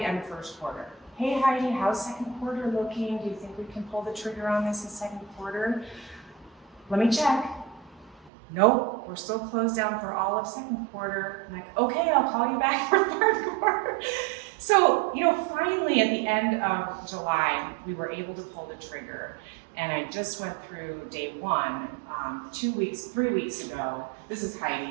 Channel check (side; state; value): left; drops out; at 8.3 s